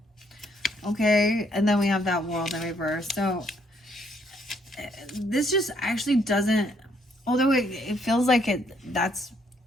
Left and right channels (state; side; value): normal; both; correlation 0.69